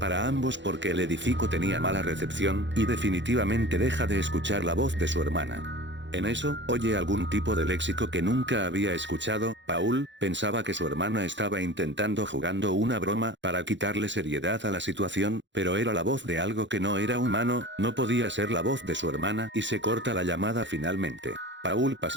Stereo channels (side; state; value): left; late; 0.53 ms